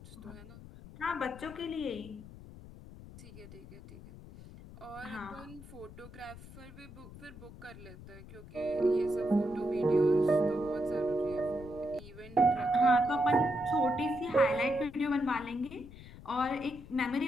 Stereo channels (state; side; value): noise; left; rumble, 16 dB below the sound